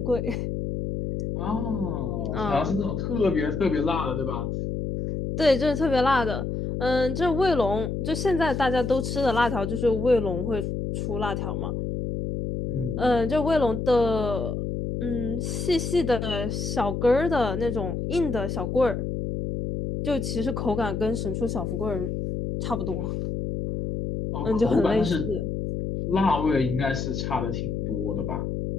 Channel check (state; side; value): noise; left; hum, 3 dB below the sound